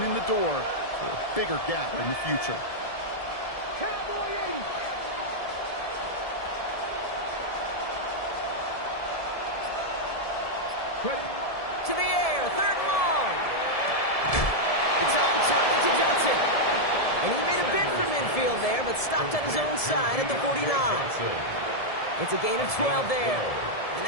the door for a bigger gap in the future. Cowboy 80. To the air, third and long. It's on target to Johnson. And he made a bid for midfield there, but stopped on his own side at the 49. It's a gain of 12 there. And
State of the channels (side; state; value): right; late; 1.7 ms